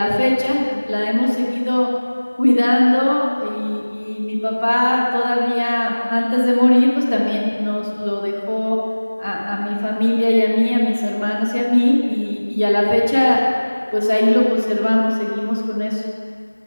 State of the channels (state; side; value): inverted; both; correlation -1.00